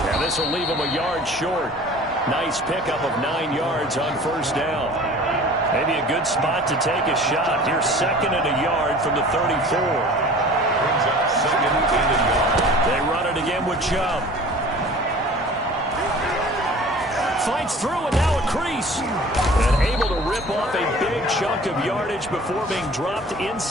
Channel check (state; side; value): normal; both; correlation 0.44